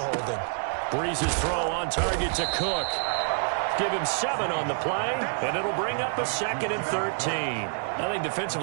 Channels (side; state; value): left; silent; 58 dB below the other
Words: Breeze's throw on target to Cook. Give him 7 on the play, and it'll bring up a 2nd and 13. I think